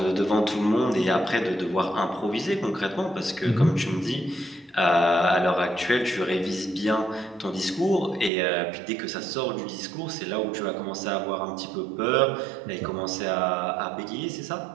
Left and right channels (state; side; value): drops out; left; at 8.3 s